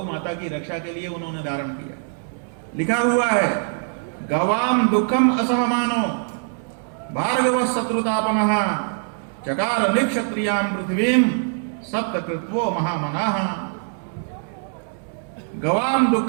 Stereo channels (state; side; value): silent; left; 64 dB below the other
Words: माता की रक्षा के लिए उन्होंने धारण किया। लिखा हुआ है गवाम दुखम असहमानो भार्गव शत्रुतापनः चकार निक्षत्रियाम पृथ्वीम सप्तकृत्वो महामनाः। गवाम